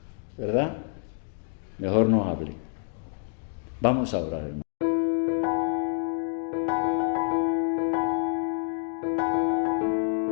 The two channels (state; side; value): silent; right; digital silence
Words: ¿verdad? Mejor no hable. Vamos a orar, hermano.